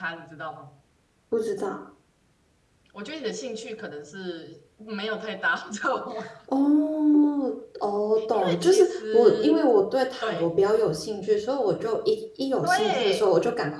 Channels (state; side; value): identical; both; correlation 1.00